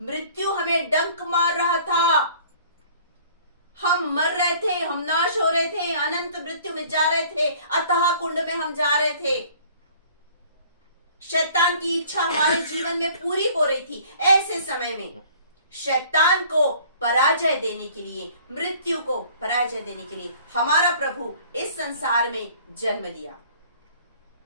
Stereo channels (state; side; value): inverted; both; correlation -0.52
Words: मृत्यु हमें डंक मार रहा था, हम मर रहे थे, हम नाश हो रहे थे, अनंत मृत्यु में जा रहे थे, अतः कुंड में हम जा रहे थे। शैतान की इच्छा हमारे जीवन में पूरी हो रही थी। ऐसे समय में शैतान को पराजय देने के लिए, मृत्यु को पराजय देने के लिए हमारा प्रभु इस संसार में जन्म लिया